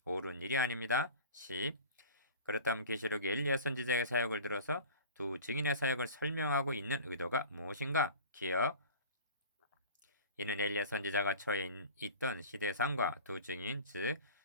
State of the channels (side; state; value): both; inverted; correlation -0.39